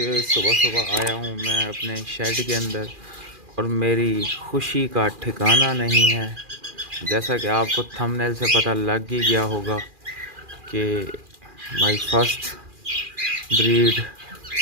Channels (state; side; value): late; left; 2.4 ms